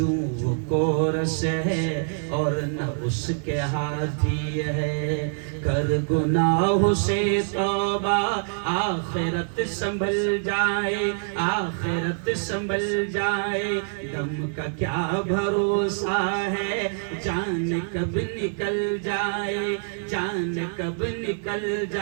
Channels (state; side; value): silent; left; 57 dB below the other